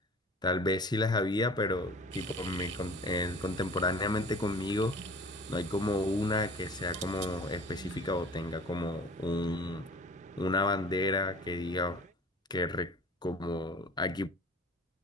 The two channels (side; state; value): both; normal; correlation 0.44